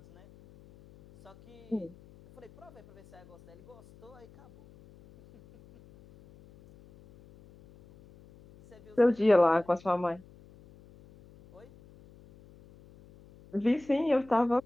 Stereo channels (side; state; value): left; noise; hum, 24 dB below the sound